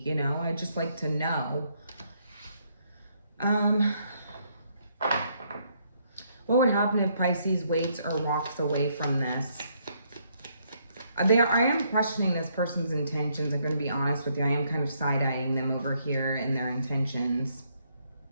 you know, I'd just like to know. What would happen if Pisces waits or walks away from this? I am questioning this person's intentions. I'm going to be honest with you. I am kind of side-eyeing them over here in their intentions.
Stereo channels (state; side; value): inverted; both; correlation -0.72